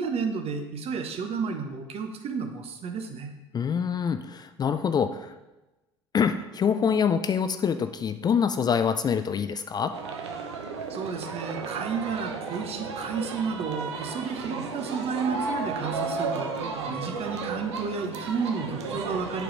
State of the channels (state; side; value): normal; both; correlation 0.51